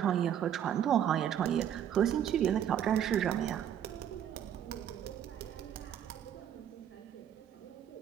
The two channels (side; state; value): left; quieter; 9.7 dB